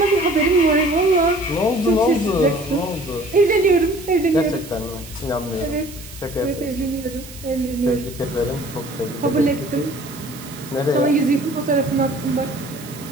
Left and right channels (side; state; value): right; noise; hiss, 16 dB below the sound